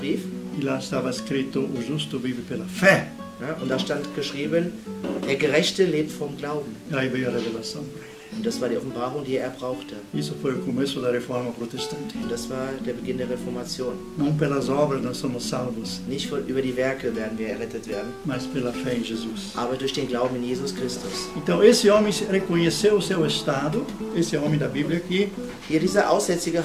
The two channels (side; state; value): both; identical; correlation 1.00